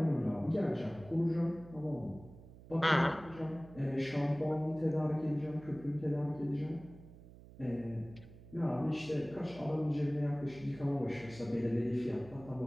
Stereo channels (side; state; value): right; noise; hum, 19 dB below the sound